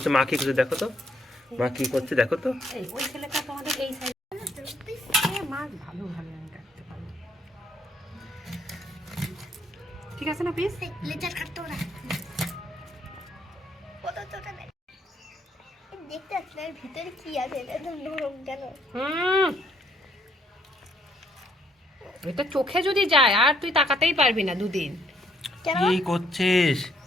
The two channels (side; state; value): both; normal; correlation 0.69